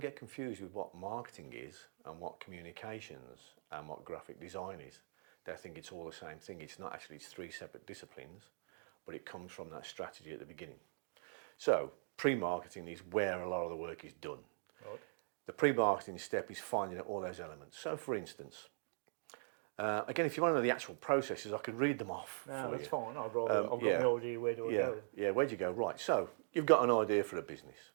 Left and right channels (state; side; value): silent; left; digital silence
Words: confused with what marketing is and what communications and what graphic design is. They think it's all the same thing. It's not actually, it's 3 separate disciplines, but it comes from that strategy at the beginning. So pre-marketing is where a lot of the work is done. Right. The pre-marketing step is finding out all those elements. So for instance, again, if you want to know the actual processes, I could read them off. No, that's fine. I've got my idea, where do I go? Yeah, where do you go? Right, so you've got an idea for a business.